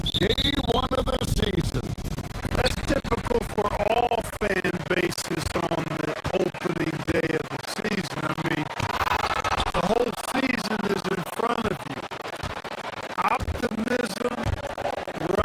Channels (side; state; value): both; identical; correlation 1.00